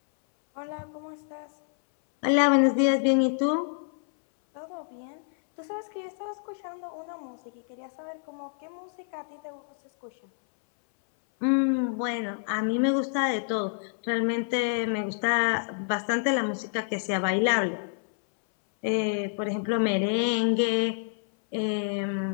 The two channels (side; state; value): right; silent; 59 dB below the other